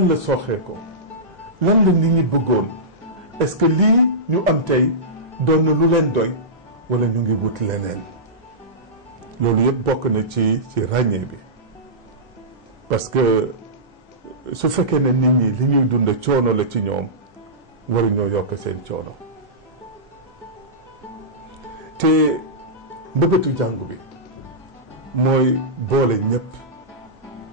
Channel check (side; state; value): both; normal; correlation -0.16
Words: la sooxee ko lan la nit ñi bëggoon est-ce que lii ñu am tey doon na lu leen doy wala ñu ngi wut leneen loolu yëpp bokk na ci ràññee bi parce que su fekkee ne nit ñi li ñuy dund coono la ci ñoom waruñoo yokk seen coono te mbëbëtu jàngu bi mooy boole ñëpp